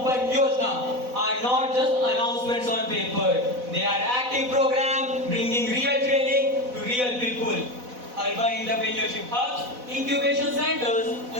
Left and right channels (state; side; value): late; left; 4.0 ms